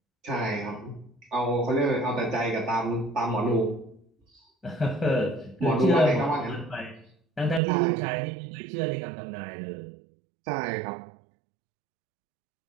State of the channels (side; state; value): left; drops out; at 7.6 s